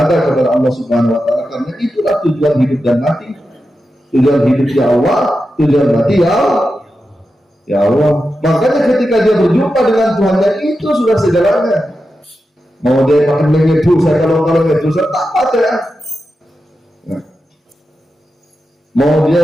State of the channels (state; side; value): normal; both; correlation 0.90